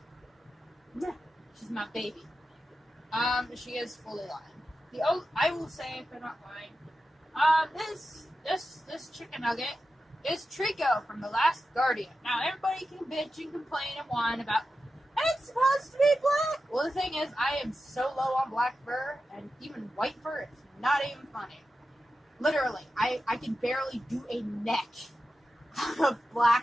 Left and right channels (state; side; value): normal; both; correlation 0.92